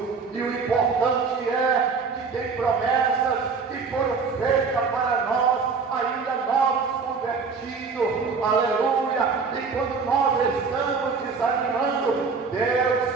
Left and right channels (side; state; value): left; quieter; 5.0 dB